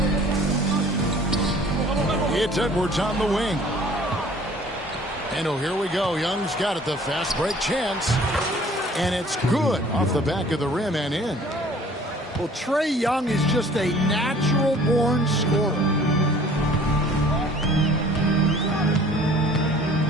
It's Edwards on the wing. And oh, here we go. Young's got it, the fast break chance. And it's good off the back of the rim and in. Well, Trae Young is just a natural-born scorer.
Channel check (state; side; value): normal; both; correlation 0.51